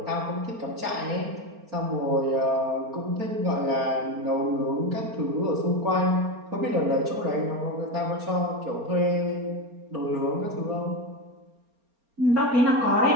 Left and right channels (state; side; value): late; left; 4.3 ms